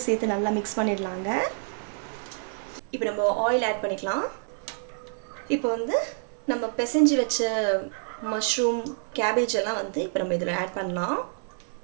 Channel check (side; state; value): left; silent; 60 dB below the other